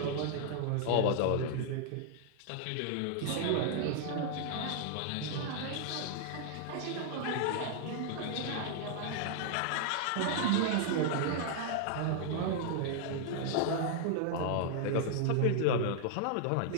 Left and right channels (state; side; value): different; both; correlation -0.01